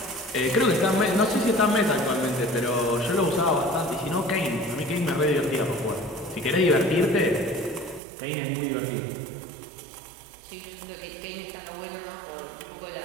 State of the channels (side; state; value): left; drops out; at 8.0 s